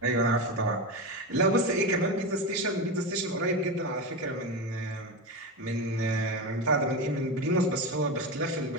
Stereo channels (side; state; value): both; normal; correlation 0.18